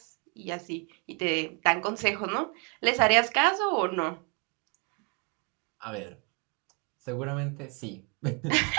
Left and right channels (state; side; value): quieter; left; 35.1 dB